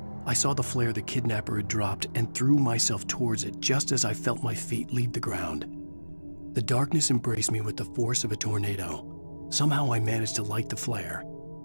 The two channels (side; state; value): both; inverted; correlation -1.00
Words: I saw the flare the kidnapper had dropped and threw myself towards it just as I felt my feet leave the ground. The darkness embraced me with the force of a tornado. Somehow I managed to light the flare.